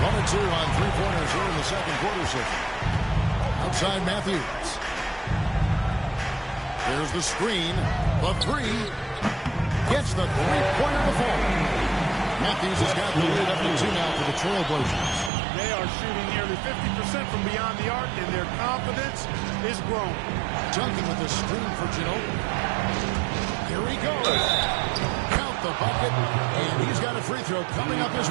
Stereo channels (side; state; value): left; drops out; at 15.3 s